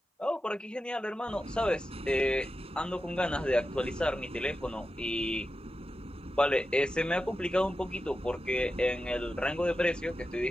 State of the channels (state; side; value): normal; both; correlation 0.91